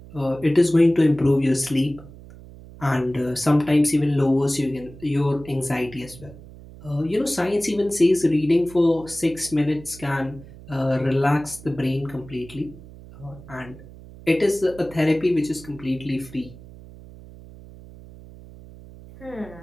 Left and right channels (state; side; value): noise; right; hum, 18 dB below the sound